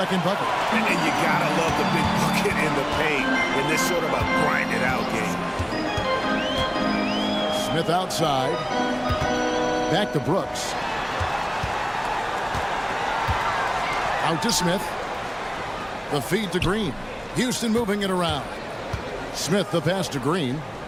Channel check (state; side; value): identical; both; correlation 1.00